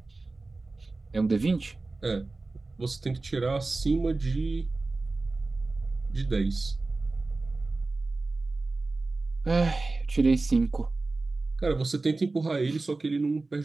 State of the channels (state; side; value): quieter; left; 3.4 dB